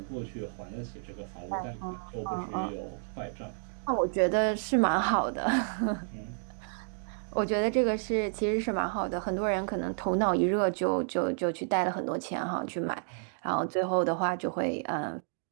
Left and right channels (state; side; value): silent; left; digital silence